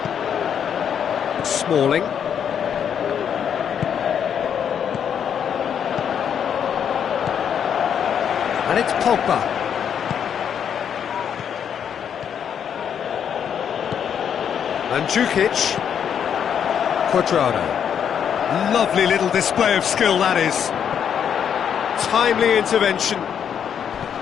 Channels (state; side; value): quieter; right; 8.3 dB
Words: Smalling. And it's Pogba. Mandzukic. Cuadrado. Lovely little display of skill, that is. Timely intervention.